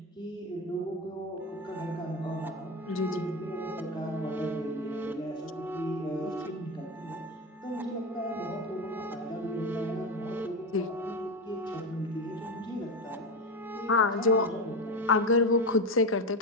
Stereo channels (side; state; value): both; normal; correlation 0.18